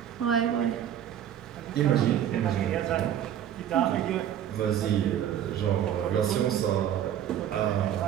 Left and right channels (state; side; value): quieter; left; 10.3 dB